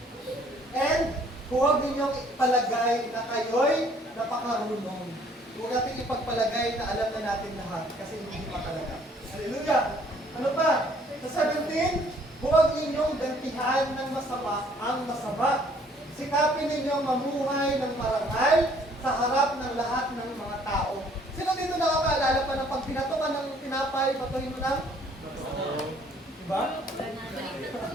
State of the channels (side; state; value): both; normal; correlation 0.60